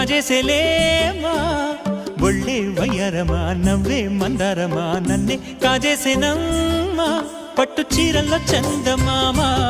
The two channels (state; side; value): identical; both; correlation 1.00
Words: ఒళ్ళే వయ్యారమా నవ్వే మందారమా నన్నే కాజేసేనమ్మా పట్టు చీరల్లో చందమామా